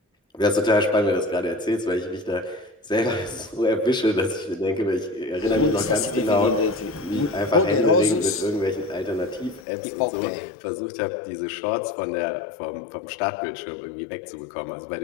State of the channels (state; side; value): drops out; right; at 9.6 s